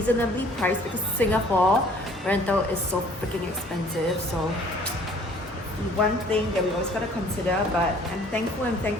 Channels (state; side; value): normal; both; correlation 0.54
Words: priced, because Singapore rental is so freaking expensive. So one thing that we always gotta consider, but I'm